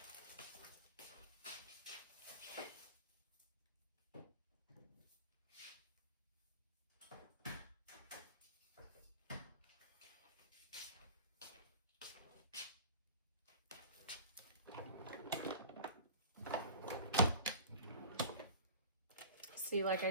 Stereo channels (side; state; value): both; inverted; correlation -0.39